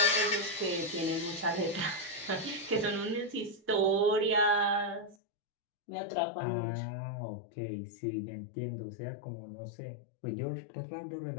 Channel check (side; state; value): right; drops out; at 5.2 s